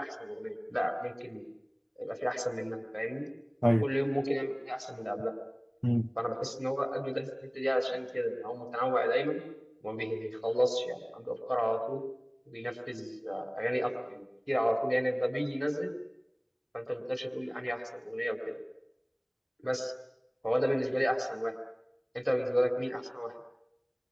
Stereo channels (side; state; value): both; identical; correlation 1.00